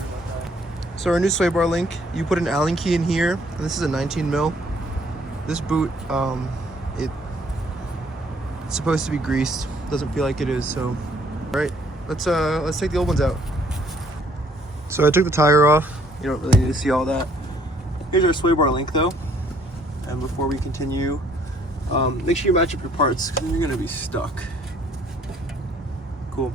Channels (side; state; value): both; normal; correlation 0.63